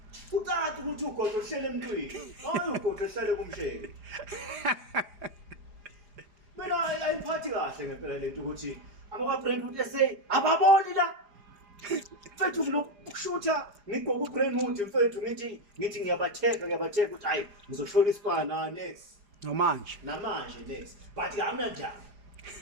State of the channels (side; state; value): left; late; 4.9 ms